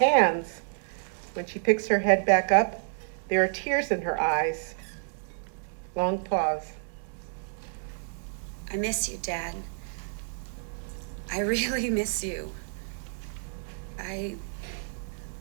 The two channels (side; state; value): left; silent; digital silence